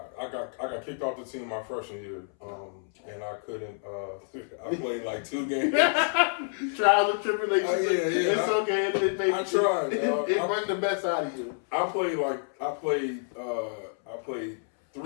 I got kicked off the team my freshman year, and I couldn't. I played like 2 games. Trials and tribulations. It's okay. I tried. It brought the best out of you. I played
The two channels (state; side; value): silent; right; 59 dB below the other